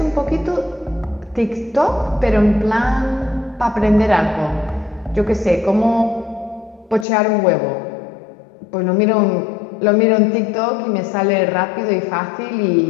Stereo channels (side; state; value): right; drops out; at 7.1 s